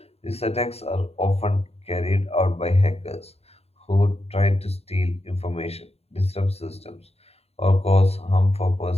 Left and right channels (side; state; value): right; late; 0.30 ms